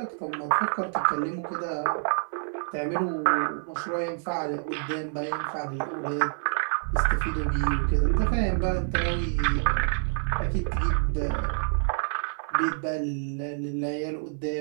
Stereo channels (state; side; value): silent; left; 60 dB below the other